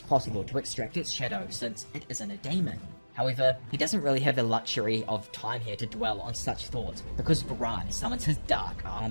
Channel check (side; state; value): both; inverted; correlation -1.00